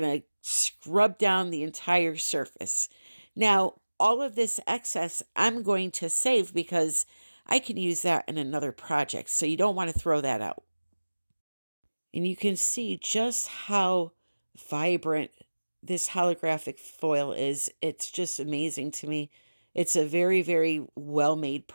to scrub down the entire surface. Now, all of this excess I'm going to save because I can use that in another project. So you don't want to throw that out. And you can see just how vibrant this holographic foil is. It's just amazing to me. It's a very, very well-made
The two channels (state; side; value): inverted; both; correlation -1.00